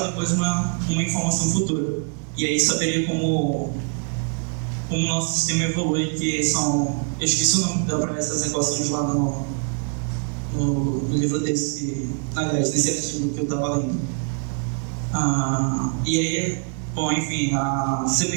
e depois uma informação futura. E aí saberia como o nosso sistema evolui, que são... Eu esqueci o nome para essas equações lá no livro desse, aliás, nesse artigo que eu estava lendo. E aí, bom, enfim, a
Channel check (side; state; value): left; quieter; 39.8 dB